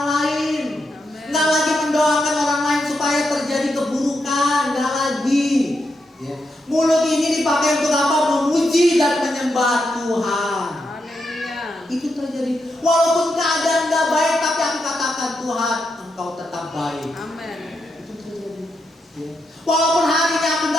lain. Nggak lagi mendoakan orang lain supaya terjadi keburukan. Nggak lagi. Ya. Mulut ini dipakai untuk apa? Memuji dan menyembah Tuhan. Itu terjadi. Walaupun keadaan nggak baik, tapi aku katakan Tuhan, Engkau tetap baik. Amin. Itu terjadi. Ya. Walaupun hari ini aku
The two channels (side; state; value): both; normal; correlation 0.84